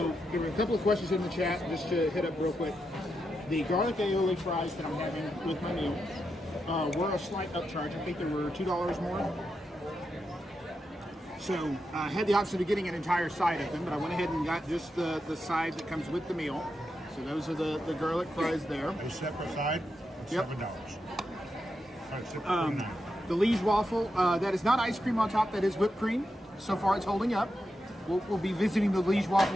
there were a couple of questions in the chat, just to hit up real quick. The garlic aioli fries that I'm having with my meal were a slight upcharge. I think there were $2 more. So I had the option of getting an entire side of them, but I went ahead and got just the side that comes with the meal. So those are the garlic fries there. A separate side, Yep. $7. The Liege waffle, that is not ice cream on top, that is whipped cream. So far it's holding up. We'll be visiting the Liege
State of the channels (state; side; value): normal; both; correlation 0.86